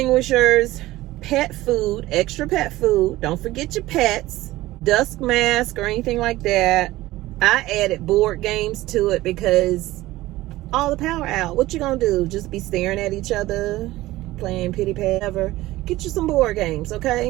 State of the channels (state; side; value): quieter; left; 17.3 dB